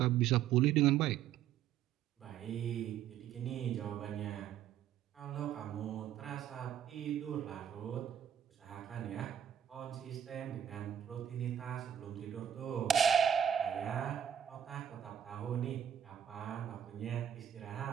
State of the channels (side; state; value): left; quieter; 9.7 dB